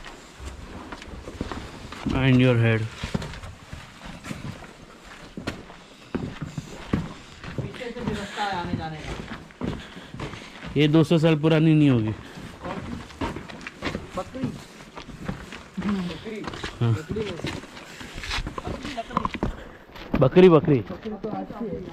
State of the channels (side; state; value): both; identical; correlation 1.00